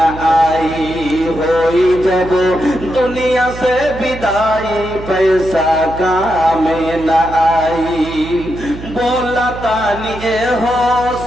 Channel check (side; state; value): right; noise; hum, 12 dB below the sound